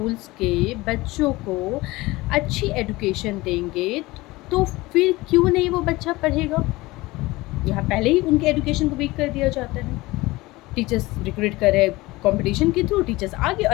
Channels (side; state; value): right; quieter; 20.4 dB